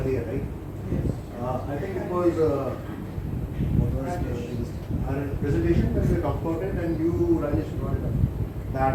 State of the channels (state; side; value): identical; both; correlation 1.00